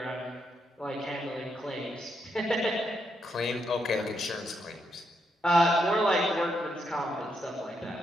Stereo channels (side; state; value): both; normal; correlation 0.79